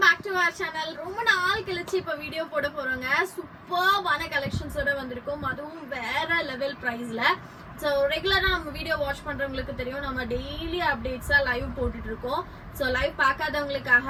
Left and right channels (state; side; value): identical; both; correlation 1.00